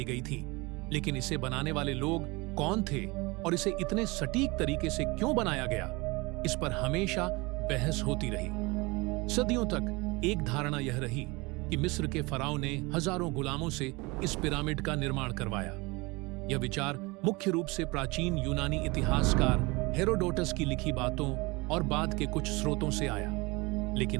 गई थी, लेकिन इसे बनाने वाले लोग कौन थे और इसे इतने सटीक तरीके से क्यों बनाया गया, इस पर हमेशा बहस होती रही। सदियों तक एक धारणा यह रही कि मिस्र के फराओं ने हजारों गुलामों से इस पिरामिड का निर्माण करवाया। यह विचार मुख्य रूप से प्राचीन यूनानी इतिहासकार हेरोडोटस की लिखी बातों और बाद के कुछ स्रोतों से आया,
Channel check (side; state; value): left; quieter; 24.9 dB